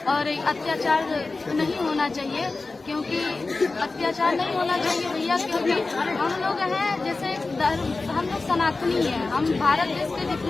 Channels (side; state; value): right; quieter; 3.6 dB